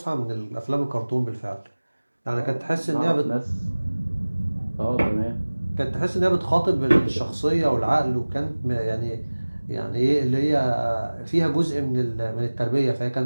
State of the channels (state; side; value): inverted; both; correlation -1.00